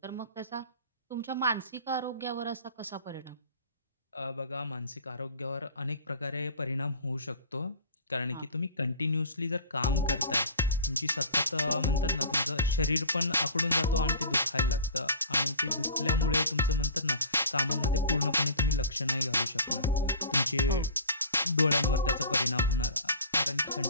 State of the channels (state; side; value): inverted; both; correlation -0.42